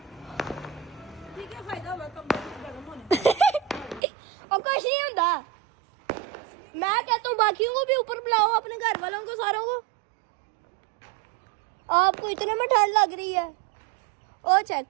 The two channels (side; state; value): left; drops out; at 4.0 s